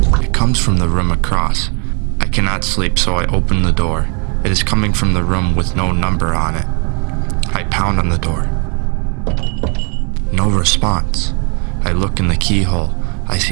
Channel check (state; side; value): quieter; left; 36.7 dB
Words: It comes from the room across. I cannot sleep, so I open the door. It is coming from the room with no number on it. I pound on the door. No response. I look in the keyhole. I